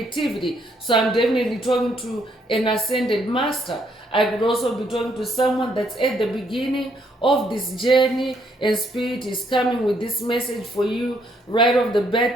So I'm definitely talking to an ascended master. I could also be talking to someone that's at the beginning of this journey, and spirit is coming with this message for you right off the bat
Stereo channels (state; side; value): normal; both; correlation 0.71